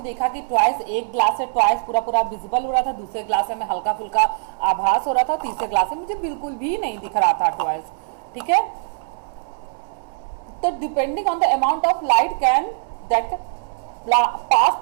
देखा कि ट्वाइस, एक ग्लास है ट्वाइस पूरा पूरा विजिबल हो रहा था, दूसरे ग्लास में हल्का फुल्का आभास हो रहा था, तीसरे ग्लास में मुझे बिल्कुल भी नहीं दिख रहा था ट्वाइस। ठीक है, तो depending on the amount of light that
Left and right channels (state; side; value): silent; left; 63 dB below the other